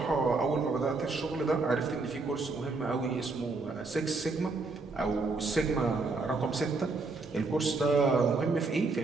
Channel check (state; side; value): quieter; left; 3.7 dB